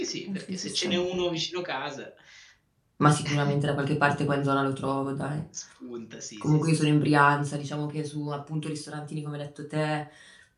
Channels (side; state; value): both; identical; correlation 1.00